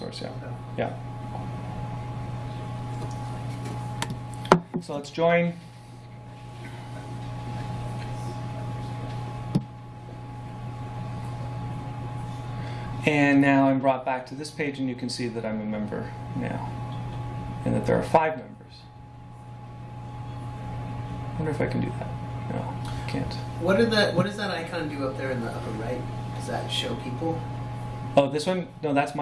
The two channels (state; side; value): identical; both; correlation 1.00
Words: Yeah, Okay. yeah. So let's join. And now I'm brought back to this page, and you can see that I'm a member now, and that there are 5 members. I wonder if I can do that. No, I can't. What does that icon do up there in the upper right? Does that show people? Oh, this one? No, that's